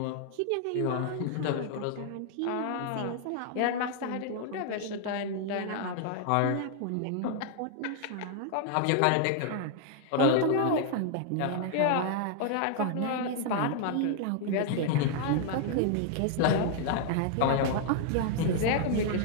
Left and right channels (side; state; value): both; different; correlation 0.00